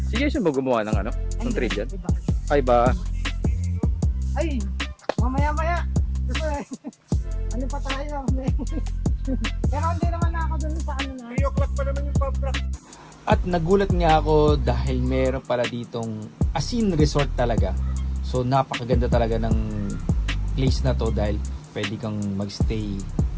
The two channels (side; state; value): both; identical; correlation 1.00